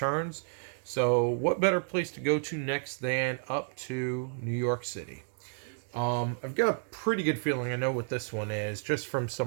So, what better place to go to next than up to New York City? I've got a pretty good feeling I know what this one is, just from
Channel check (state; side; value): silent; left; 57 dB below the other